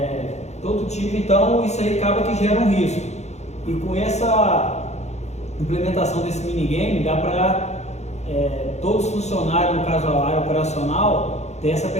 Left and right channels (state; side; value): late; right; 0.32 ms